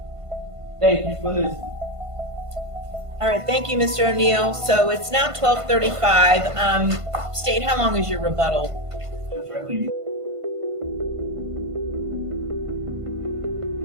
Thank you for listening. All right, thank you, Mr. O'Neal. So it's now 12:35. State, how long is your rebuttal?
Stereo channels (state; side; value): late; left; 1.5 ms